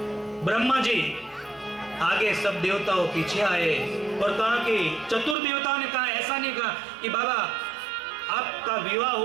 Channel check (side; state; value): left; drops out; at 5.4 s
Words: ब्रह्मा जी आगे, सब देवताओं पीछे आए और कहा कि चतुर देवताओं ने कहा, ऐसा नहीं कहा कि बाबा आपका विवाह